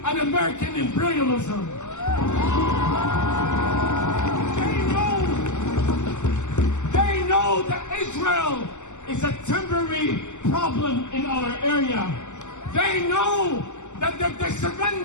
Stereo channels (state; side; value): late; right; 0.84 ms